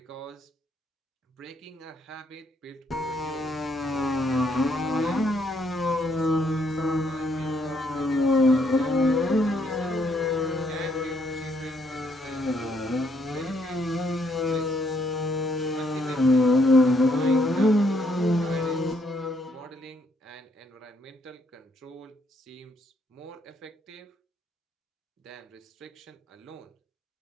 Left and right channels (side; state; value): both; normal; correlation 0.71